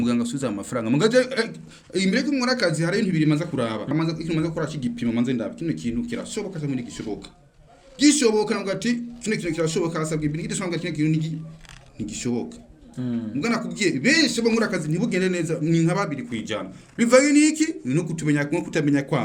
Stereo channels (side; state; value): both; identical; correlation 1.00